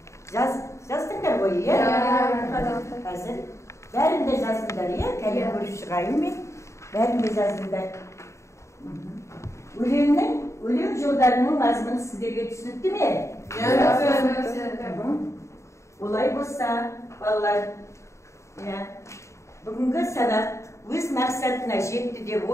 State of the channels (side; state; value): right; late; 0.14 ms